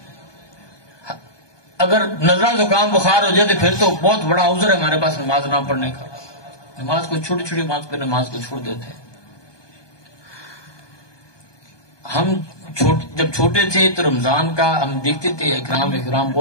اگر نزلہ زکام بخار ہو جائے تو پھر تو بہت بڑا عذر ہے ہمارے پاس نماز نہ پڑھنے کا۔ نماز کو چھوٹی چھوٹی بات پہ نماز کو چھوڑ دیتے ہیں۔ ہم جب چھوٹے تھے تو رمضان کا ہم دیکھتے تھے احترام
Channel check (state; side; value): late; right; 1.2 ms